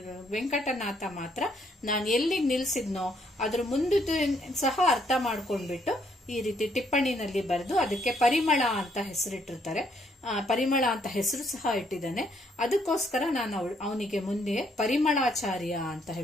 ವೆಂಕಟನಾಥ ಮಾತ್ರ ನಾನು ಎಲ್ಲಿಗೆ ನಿಲ್ಸಿದ್ನೋ ಅದ್ರ ಮುಂದಿದ್ದು ಸಹ ಅರ್ಥ ಮಾಡ್ಕೊಂಡ್ಬಿಟ್ಟು ಈ ರೀತಿ ಟಿಪ್ಪಣಿನಲ್ಲಿ ಬರೆದು ಅದಕ್ಕೆ ಪರಿಮಳ ಅಂತ ಹೆಸರಿಟ್ಟಿರ್ತಾರೆ. ಪರಿಮಳ ಅಂತ ಹೆಸರು ಸಹ ಇಟ್ಟಿದ್ದಾನೆ. ಅದಕ್ಕೋಸ್ಕರ ನಾನು ಅವನಿಗೆ ಮುಂದೆ ಪರಿಮಳಾಚಾರ್ಯ ಅಂತ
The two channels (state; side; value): normal; both; correlation 0.70